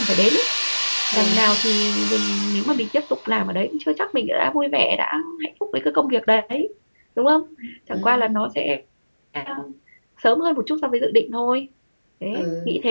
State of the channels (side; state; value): both; inverted; correlation -1.00